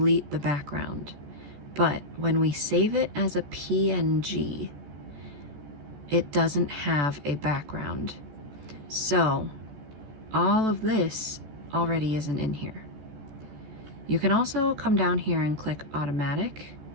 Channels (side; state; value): left; late; 14 ms